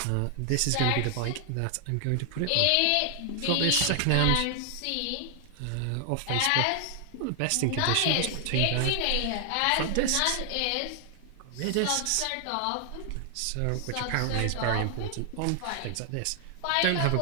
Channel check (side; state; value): both; different; correlation 0.00